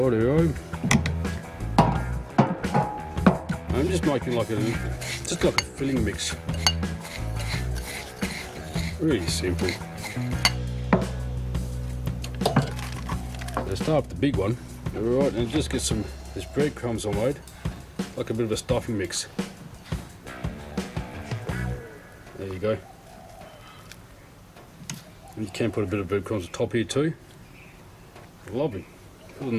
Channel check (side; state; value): both; identical; correlation 1.00